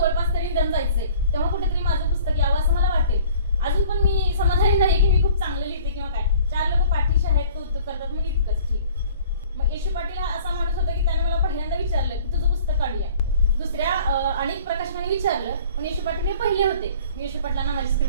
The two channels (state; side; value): inverted; both; correlation -0.50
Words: तरी निदान जायचंय, तेव्हा कुठेतरी माझं पुस्तक यावं असं मला वाटेल. अजून पण मी समाधानी नाही की मी खूप चांगलं लिहिते किंवा काय. 4 लोक पाठीशी आहेत, कौतुक करतात, म्हणून इतकंच ठीक. मग येशू पाटील असा माणूस होता की त्याने मला पहिल्यांदा विचारलं की तुझं पुस्तक काढूया. दुसऱ्या अनेक प्रकाशकांनी विचारलं, पण येशू पाटील हे पहिले होते. मी येशू पाटलांना माझी